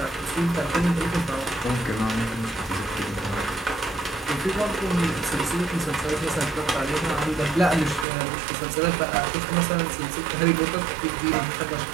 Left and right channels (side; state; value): left; drops out; at 8.1 s